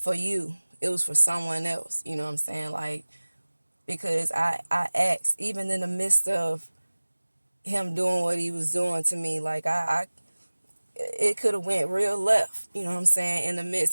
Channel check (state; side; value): inverted; both; correlation -1.00